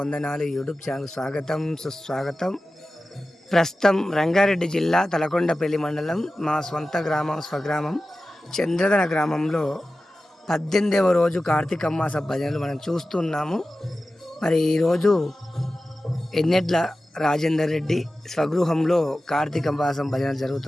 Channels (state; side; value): normal; both; correlation 0.94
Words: యూట్యూబ్ ఛానల్ స్వాగతం, సుస్వాగతం. ప్రస్తుతం రంగారెడ్డి జిల్లా తలకొండపల్లి మండలం మా స్వగ్రామం చంద్రధన గ్రామంలో 18వ రోజు కార్తీక మాస భజనలు మనం చూస్తున్నాము. మరి ఈరోజు ఎన్నెడ్ల రాజేందర్ రెడ్డి స్వగృహంలో కార్తీక మాసం భజనలు